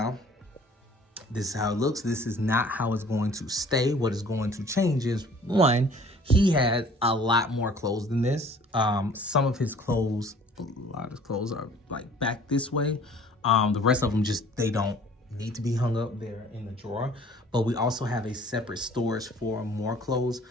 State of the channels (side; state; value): both; normal; correlation 0.52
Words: this is how it looks. This is not how it's going to stay. What is going to change is, one, he has a lot more clothes than this. Some of his clothes, a lot of his clothes are like back this way. The rest of them just, they don't need to be hung up there in the drawer. But we also have a separate storage for more clothes.